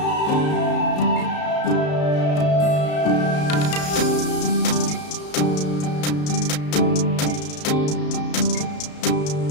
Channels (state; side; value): late; right; 33 ms